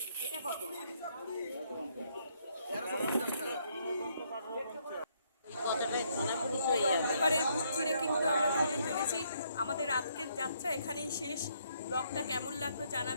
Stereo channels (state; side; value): inverted; both; correlation -0.71